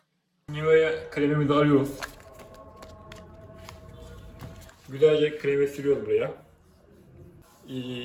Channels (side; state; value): both; identical; correlation 1.00